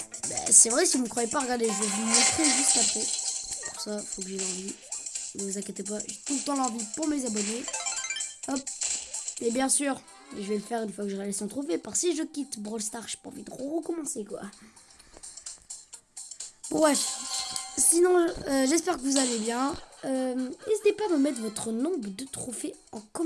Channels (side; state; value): both; identical; correlation 1.00